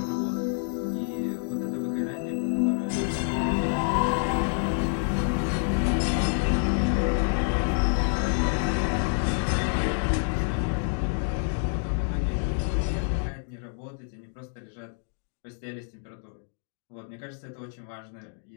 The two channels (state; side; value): silent; right; 60 dB below the other